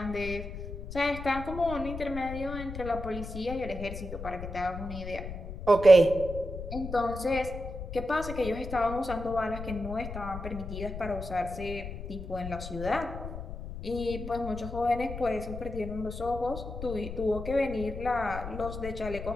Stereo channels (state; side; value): noise; left; rumble, 8 dB below the sound